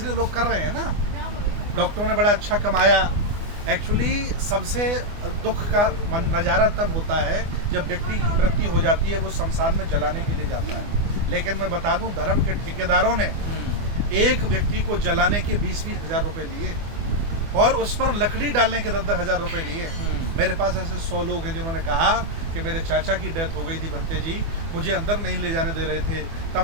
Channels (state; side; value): late; left; 24 ms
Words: लोग कर रहे हैं ना। डॉक्टरों ने बड़ा अच्छा कमाया। एक्चुअली सबसे दुख का नज़ारा तब होता है जब व्यक्ति की मृत्यु हो जाती है, वो शमशान में जलाने के लिए जाता है। लेकिन मैं बता दूं, धर्म के ठेकेदारों ने एक व्यक्ति को जलाने के 20-20 हज़ार रुपये लिए, और उस पर लकड़ी डालने के 10-10 हज़ार रुपये लिए। मेरे पास ऐसे 100 लोग हैं जिन्होंने कहा कि मेरे चाचा की डेथ हो गई थी बनते जी, मुझे अंदर नहीं ले जाने दे रहे थे, तब